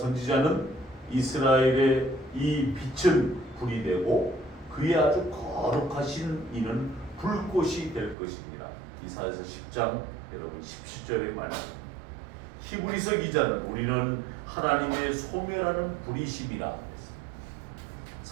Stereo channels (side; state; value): left; drops out; at 8.2 s